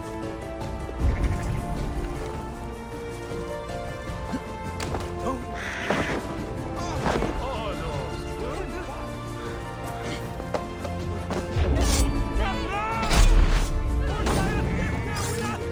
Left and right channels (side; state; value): both; identical; correlation 1.00